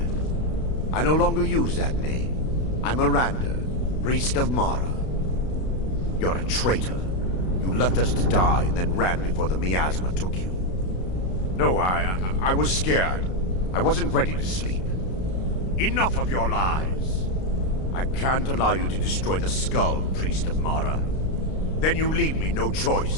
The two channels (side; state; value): right; late; 32 ms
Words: I no longer use that name. I'm Miranda, priest of Mara. You're a traitor. You left us to die and then ran before the miasma took you. No, I was scared. I wasn't ready to sleep. Enough of your lies. I can't allow you to destroy the skull, priest of Mara. Then you leave me no